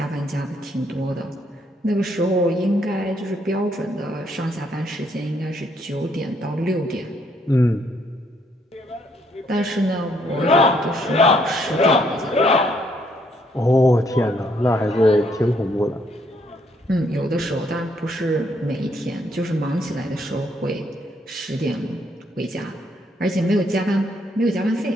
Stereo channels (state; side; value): normal; both; correlation 0.70